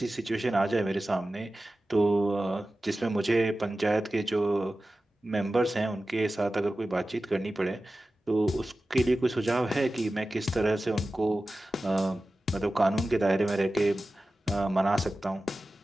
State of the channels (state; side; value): normal; both; correlation 0.95